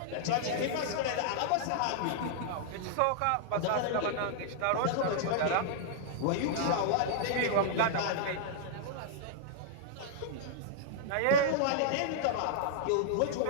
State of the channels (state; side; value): different; both; correlation -0.01